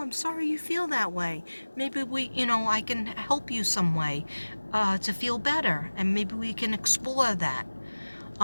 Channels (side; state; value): both; inverted; correlation -1.00